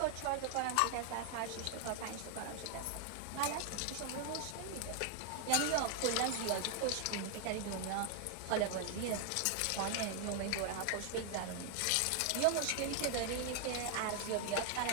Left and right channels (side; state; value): both; different; correlation 0.00